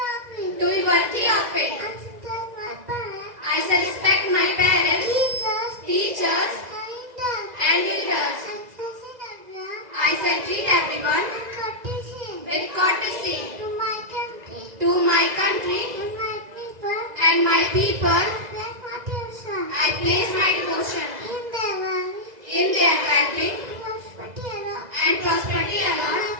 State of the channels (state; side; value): late; left; 2.0 ms